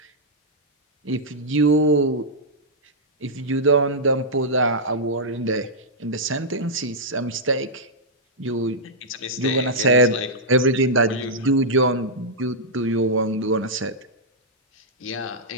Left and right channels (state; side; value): normal; both; correlation -0.09